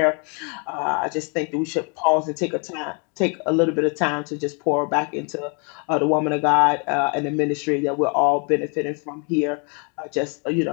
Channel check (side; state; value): right; quieter; 36.1 dB